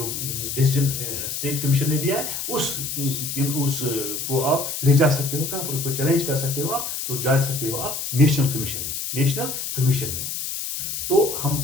डिसीजन स्टेट कमीशन ने दिया है उस को आप ले जा सकते हो। कहां पर? उसको चैलेंज कर सकते हो आप, तो जा सकते हो आप नेशनल कमीशन में, नेशनल कमीशन में। तो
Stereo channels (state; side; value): noise; left; hiss, 4 dB below the sound